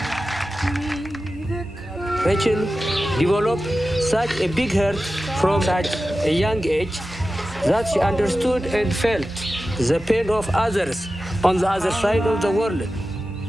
Rachel developed such a big heart from such a young age that she understood and felt the pain of others on the other side of the world.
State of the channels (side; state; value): both; normal; correlation 0.93